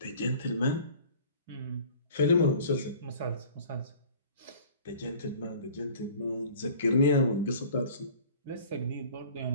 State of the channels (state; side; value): inverted; both; correlation -0.47